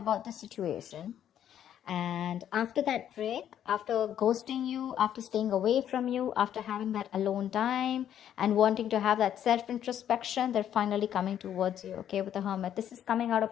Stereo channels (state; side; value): quieter; right; 10.2 dB